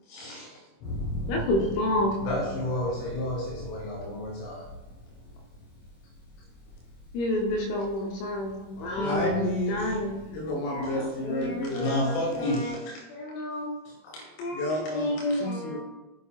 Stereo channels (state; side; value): late; right; 26 ms